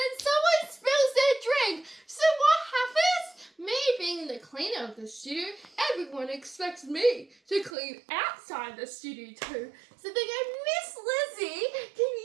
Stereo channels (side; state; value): left; drops out; at 7.7 s